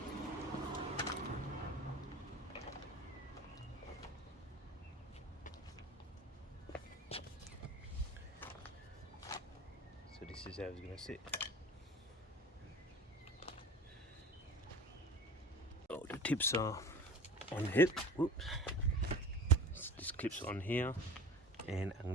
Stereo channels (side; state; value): both; normal; correlation 0.38